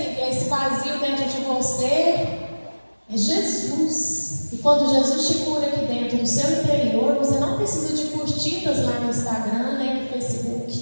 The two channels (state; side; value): inverted; both; correlation -1.00